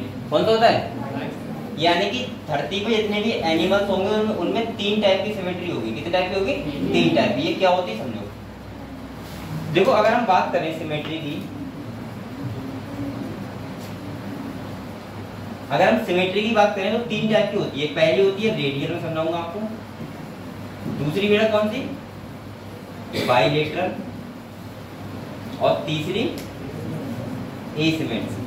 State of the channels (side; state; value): both; identical; correlation 1.00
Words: कौन सा होता है? यानी कि धरती पे जितने भी एनिमल्स होंगे उनमें 3 टाइप की सिमेट्री होगी। कितने टाइप की होगी? 3 टाइप की। ये क्या होती है समझो। देखो अगर हम बात करें सिमेट्री की, अगर हम सिमेट्री की बात करें तो 3 टाइप की होती है। पहली होती है रेडियल, में समझाऊंगा आपको। दूसरी बेटा कौन सी? बाइलेटरल। और तीसरी